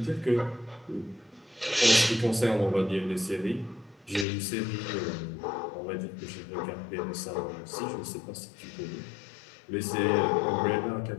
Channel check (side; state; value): right; drops out; at 4.2 s